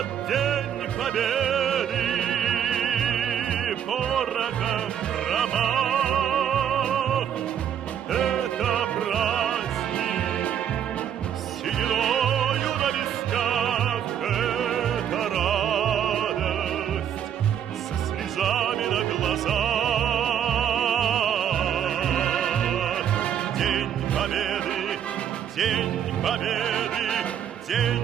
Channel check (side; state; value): left; quieter; 9.3 dB